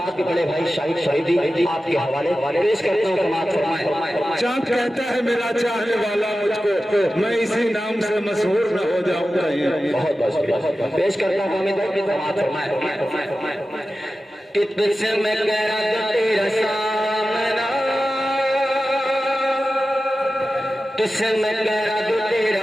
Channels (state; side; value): normal; both; correlation 0.94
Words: के बड़े भाई शाहिद शहीदी आपके हवाले पेश करता हूँ समाज फरमाए चाँद कहता है मेरा चाहने वाला मुझको मैं इसी नाम से मशहूर न हो जाऊंगा बहुत बहुत पेश करता हूँ समाज फरमाए तुझसे मैं कह रहा था तेरा सामना तुझसे मैं कह रहा था